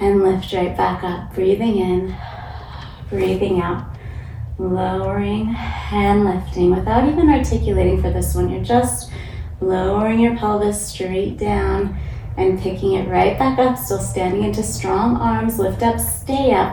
lift right back up. Breathing in, breathing out. Lowering and lifting without even articulating for this one. You're just lowering your pelvis straight down and picking it right back up. Still standing into strong arms. Lift up, stay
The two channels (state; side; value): identical; both; correlation 1.00